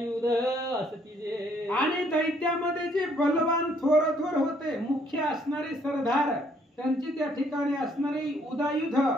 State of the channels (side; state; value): both; normal; correlation 0.66